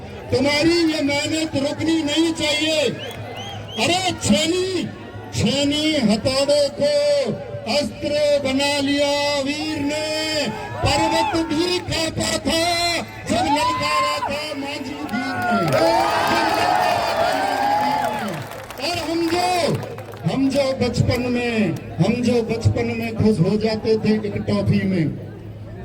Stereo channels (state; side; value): identical; both; correlation 1.00